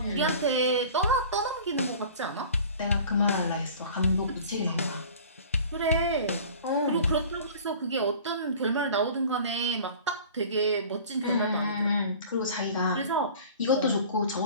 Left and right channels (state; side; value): inverted; both; correlation -0.43